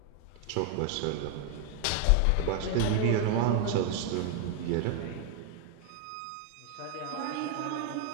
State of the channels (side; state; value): both; different; correlation 0.00